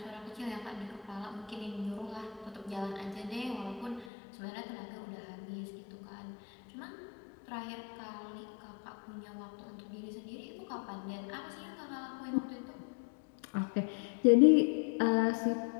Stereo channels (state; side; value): drops out; right; at 4.1 s